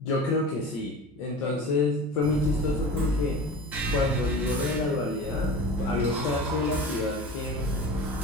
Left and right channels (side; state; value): both; normal; correlation 0.34